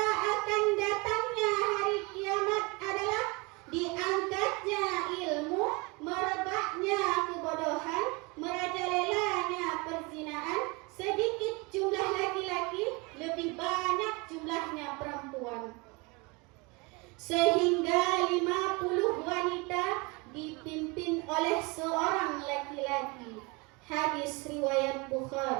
akan datangnya hari kiamat adalah diangkatnya ilmu, merebaknya kebodohan, merajalelanya perzinaan, sedikit jumlah laki-laki, lebih banyak jumlahnya perempuan, sehingga 50 wanita dipimpin oleh seorang laki-laki. Hadis riwayat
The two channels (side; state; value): left; quieter; 27.4 dB